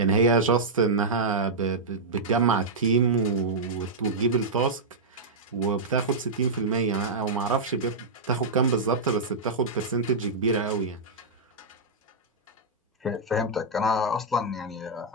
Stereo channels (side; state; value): left; quieter; 3.5 dB